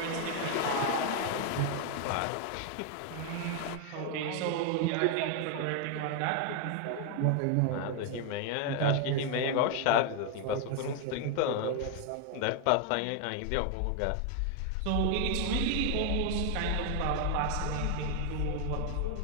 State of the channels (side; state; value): both; different; correlation 0.00